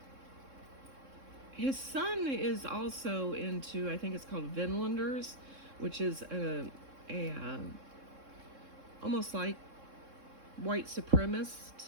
his son is also into, I think it's called Vinlanders, which is a almost like white supremacist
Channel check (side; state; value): left; late; 3.7 ms